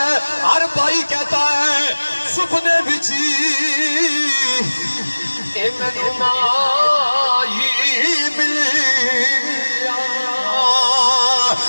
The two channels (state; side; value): inverted; both; correlation -1.00